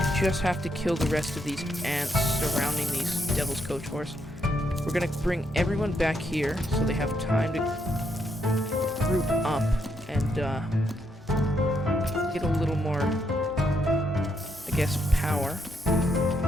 just have to kill the rest of these ants surrounding these Devil's Coach Horse. We're gonna bring everyone back here so they have time to group up and get a little more, I guess, power.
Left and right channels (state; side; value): normal; both; correlation 0.76